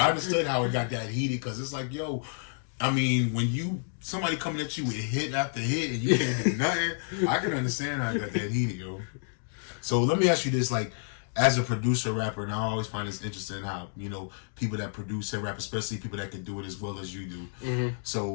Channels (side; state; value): right; silent; digital silence